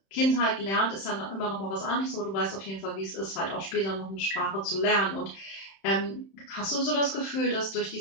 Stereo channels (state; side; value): late; right; 31 ms